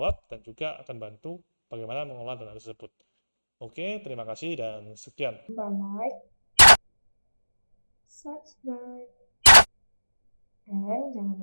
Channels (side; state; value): both; inverted; correlation -1.00